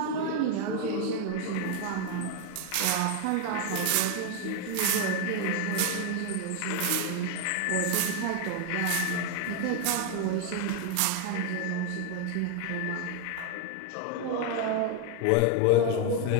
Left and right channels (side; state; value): both; different; correlation 0.01